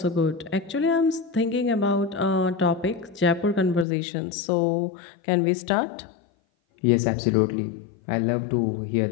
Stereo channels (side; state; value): right; drops out; at 3.9 s